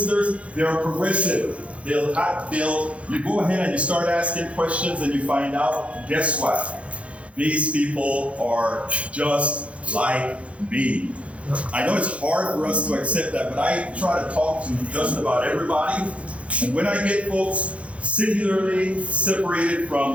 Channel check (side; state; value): left; late; 0.062 ms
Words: they are progressive. You go ahead and you start asking questions and you find out, guess what? These people are just like me. I know it's hard for us to accept that, but I try to talk to just about everybody. And when I get folks singularly separated